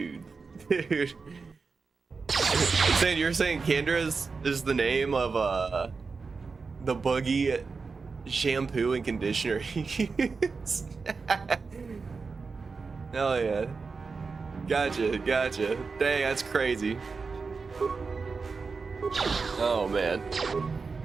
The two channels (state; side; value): quieter; left; 4.6 dB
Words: You're saying Kendra is the name of the buggy shampoo and conditioner he used? Hell yeah. Gotcha. Dang, that's crazy. Oh man.